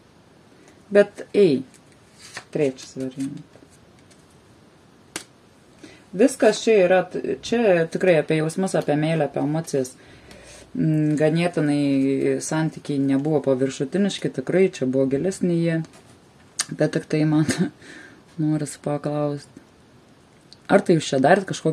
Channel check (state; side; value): identical; both; correlation 1.00